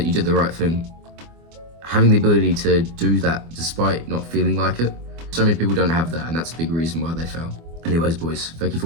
you did the right thing. Having the ability to do that despite not feeling like it, so many people don't have that, and that's a big reason why they fail. Anyways, boys, thank you for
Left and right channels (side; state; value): left; late; 24 ms